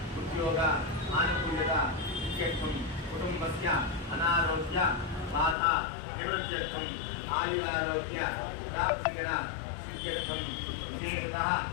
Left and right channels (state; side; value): drops out; right; at 5.6 s